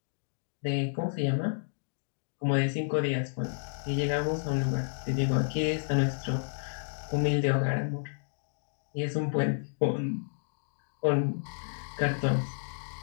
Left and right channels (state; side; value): silent; right; digital silence